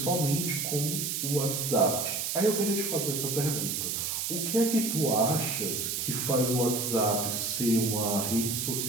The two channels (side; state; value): right; noise; hiss, 1 dB below the sound